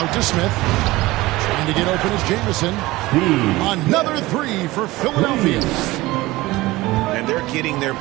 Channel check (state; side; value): quieter; left; 19.4 dB